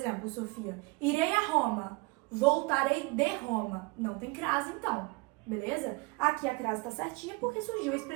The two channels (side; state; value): left; quieter; 25.8 dB